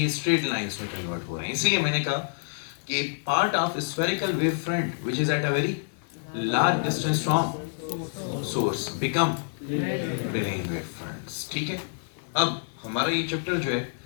straight lines में convert हो रहे हैं। इसलिए मैंने कहा कि part of spherical wave front which is at a very large distance from source become plane wave fronts. ठीक है? अब हमारा ये चैप्टर जो है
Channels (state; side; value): silent; right; digital silence